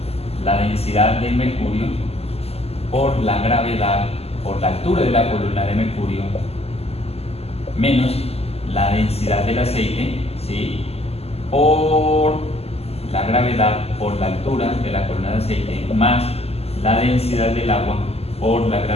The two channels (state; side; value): late; right; 0.29 ms